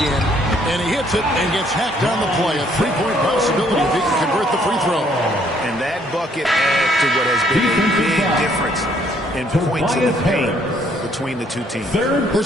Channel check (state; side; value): normal; both; correlation 0.65